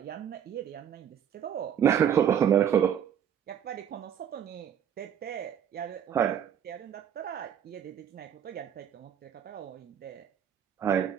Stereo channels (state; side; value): quieter; left; 8.8 dB